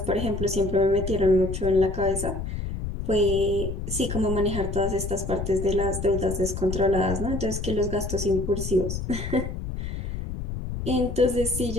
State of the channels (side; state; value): left; noise; rumble, 5 dB below the sound